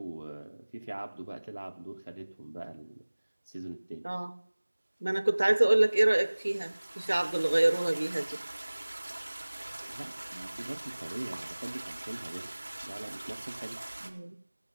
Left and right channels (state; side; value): inverted; both; correlation -1.00